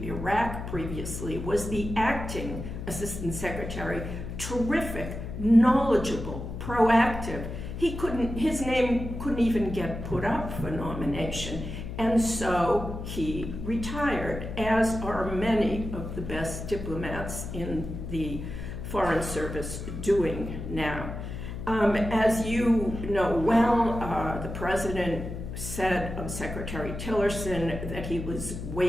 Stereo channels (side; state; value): left; noise; hum, 7 dB below the sound